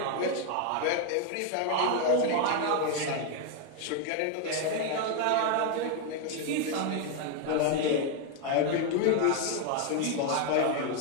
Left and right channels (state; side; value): different; both; correlation 0.01